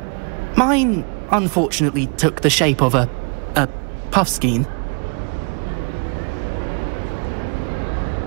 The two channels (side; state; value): left; quieter; 36.7 dB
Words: mine unfortunately took the shape of a puffskein.